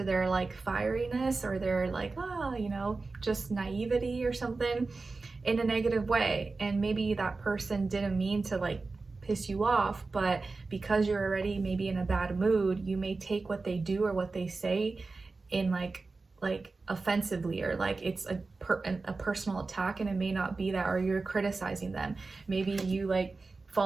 their like fieriness, or their like, you know, just naivety or something in a negative way. And maybe that person didn't mean to like piss you off, but because you're already maybe in a bad mood, you may take what they do or what they say in like offensively, or like it's a personal attack, and it may not be that, or you're criticizing them. Maybe you like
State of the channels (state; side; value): quieter; left; 3.8 dB